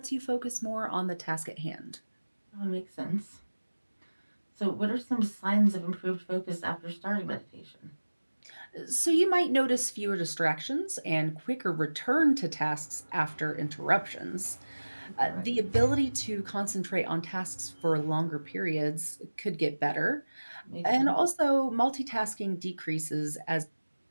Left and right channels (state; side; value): inverted; both; correlation -1.00